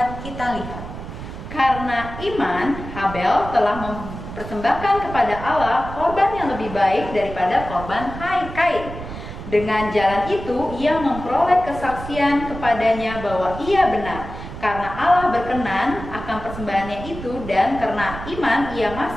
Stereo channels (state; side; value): noise; right; rumble, 10 dB below the sound